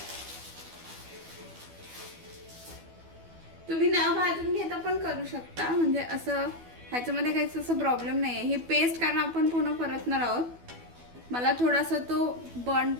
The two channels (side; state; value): left; late; 12 ms